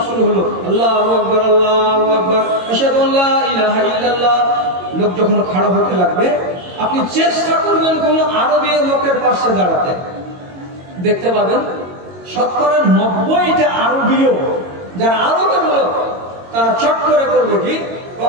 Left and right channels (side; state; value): left; late; 22 ms